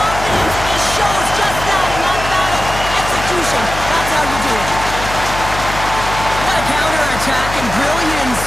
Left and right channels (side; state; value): left; noise; hum, 8 dB below the sound